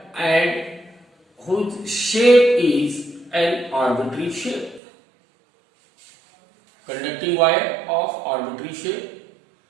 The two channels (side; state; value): left; drops out; at 4.8 s